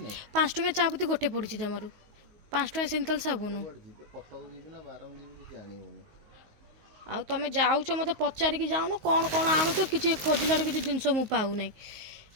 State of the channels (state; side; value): late; left; 19 ms